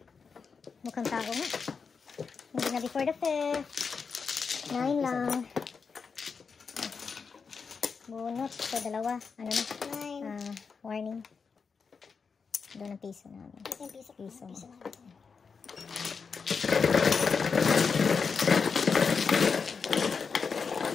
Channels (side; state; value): right; quieter; 5.5 dB